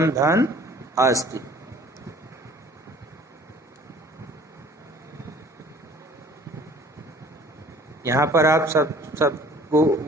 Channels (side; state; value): both; normal; correlation 0.51